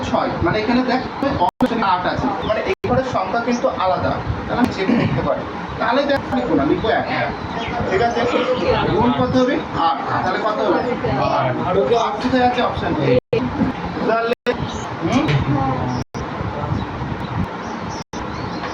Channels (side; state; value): both; identical; correlation 1.00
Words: 6, মানে এখানে দেখ অপশন 8 আছে, মানে এই ঘরের সংখ্যা কিন্তু আলাদা, তাহলে আমি চেক করতে পারি। তাহলে দেখ লিখবো না, লিখবো 1। ঠিক আছে, গুণ কত হবে 8, তাহলে কত হবে 8 কোথায় আছে অপশন এ, তাহলে